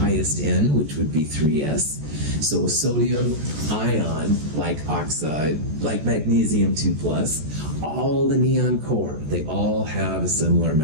N, which would be 3s. So a sodium ion, like oxide, like magnesium 2+, all the neon core, they all have a similar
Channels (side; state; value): left; late; 14 ms